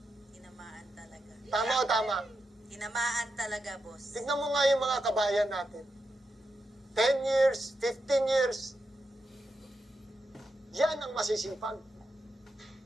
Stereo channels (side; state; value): both; normal; correlation 0.86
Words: Tinamaan talaga. Tama o tama? Tinamaan talaga, boss. Tignan mo nga yung mga kabayan natin. 10 years, 15 years. Yan ang masisipag.